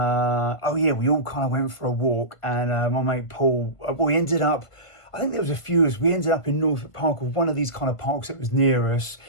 all kind of went for a walk, and my mate Paul, we ended up, I think there was a few of us, we ended up in Norfolk Park, or one of these kind of parks that was near us,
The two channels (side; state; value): right; late; 1.5 ms